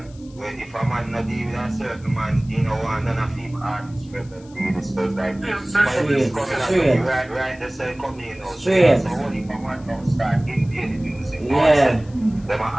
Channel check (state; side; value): noise; left; hiss, 27 dB below the sound